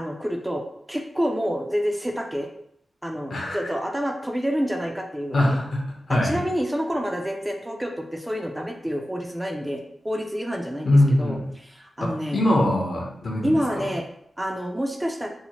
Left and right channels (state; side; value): normal; both; correlation 0.94